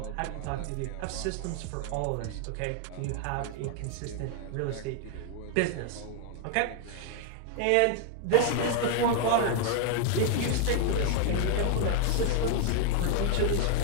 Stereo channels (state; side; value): different; both; correlation 0.00